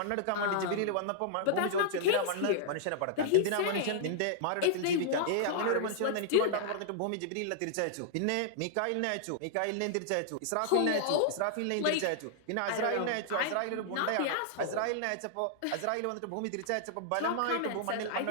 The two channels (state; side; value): different; both; correlation -0.01